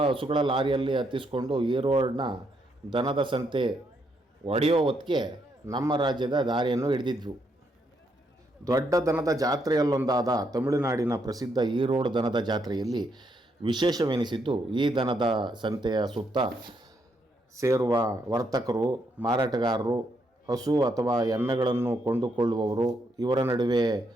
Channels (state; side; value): normal; both; correlation 0.76